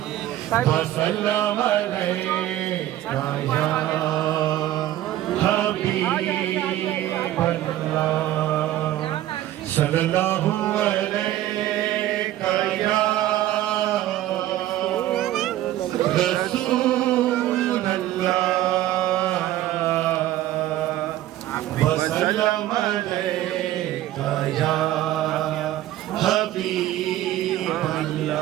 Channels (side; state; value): left; quieter; 13.9 dB